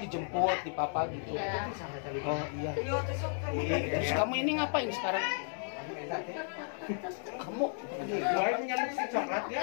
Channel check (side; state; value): right; silent; 55 dB below the other